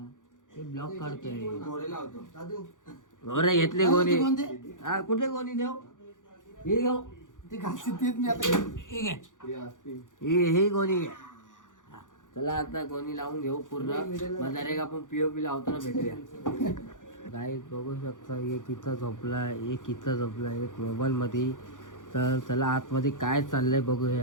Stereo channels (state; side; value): late; right; 0.87 ms